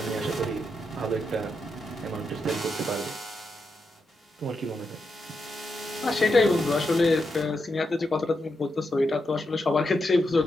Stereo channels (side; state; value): both; normal; correlation 0.84